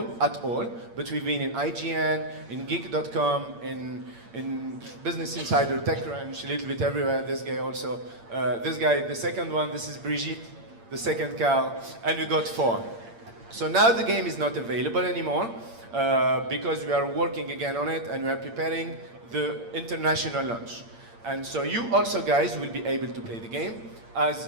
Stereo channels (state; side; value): late; left; 8.7 ms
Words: at all, but we've been in IGN, in Geek.com, in Business Insider, TechCrunch, a little bit everywhere. This guy also. This guy, the second one, this is Brigitte, the second cow, and we got 4. So now the game is not available anymore because we are working again on it, and we are preparing the international launch. And so you also guys will be able to play the game. As